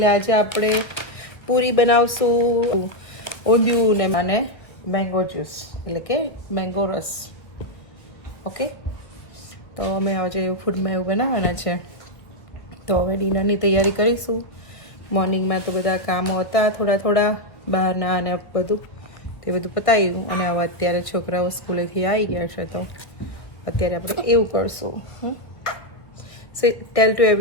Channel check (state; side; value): late; right; 1.4 ms